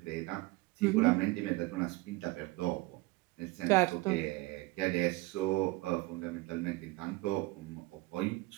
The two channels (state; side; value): quieter; left; 21.7 dB